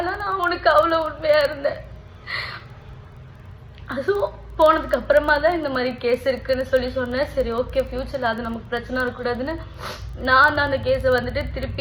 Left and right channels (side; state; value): both; identical; correlation 1.00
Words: உனக்கு அவ்வளோ உண்மையாக இருந்தேன். அதுவும் போனதுக்கு அப்புறமா தான் இந்த மாதிரி கேஸ் இருக்குன்னு சொல்லி சொன்னேன். சரி ஓகே, ஃபியூச்சரில் அது நமக்கு பிரச்சனை இருக்கக்கூடாதுன்னு நான் அந்த கேஸை வந்துட்டு